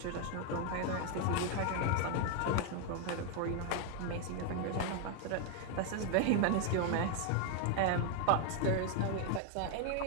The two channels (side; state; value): both; different; correlation 0.01